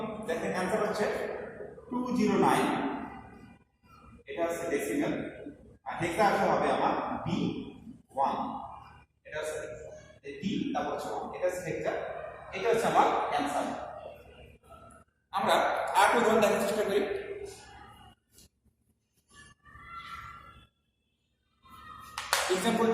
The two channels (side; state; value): both; identical; correlation 1.00